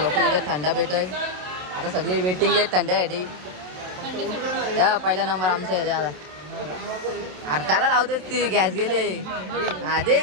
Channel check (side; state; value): left; late; 27 ms